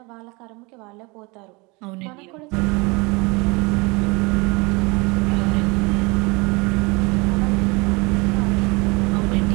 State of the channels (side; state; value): left; quieter; 26.8 dB